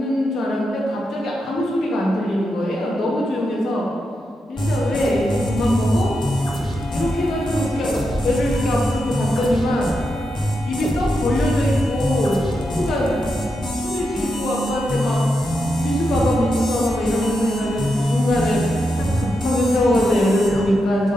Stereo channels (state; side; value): normal; both; correlation 0.86